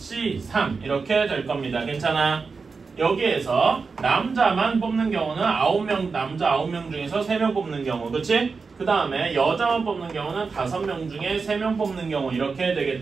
3 이렇게 될 겁니다. 괜찮아? 여기에서 남자만 뽑는 경우는 9명, 남자 9명 중에서 3명 뽑는 경우. 그치? 그 다음에 여자만 뽑는 경우는 5명 중에 3명 뽑는 경우. 이렇게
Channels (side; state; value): left; quieter; 4.7 dB